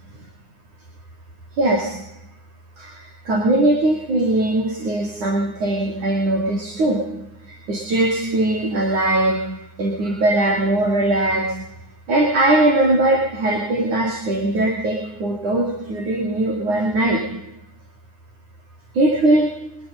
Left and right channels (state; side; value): late; left; 9.7 ms